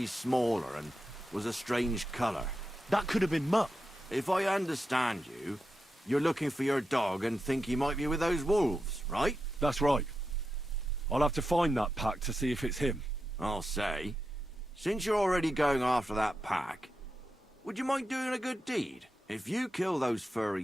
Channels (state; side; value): normal; both; correlation 0.89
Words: smaller and was a strange colour. That could have been Mutt. If I understand you, you're looking for your dog and think he might be with those wolves, right? That's right. I'll have to find that pack to see if it's him. I'll say, since you're already going after that pack, would you mind doing a good deed? If you kill those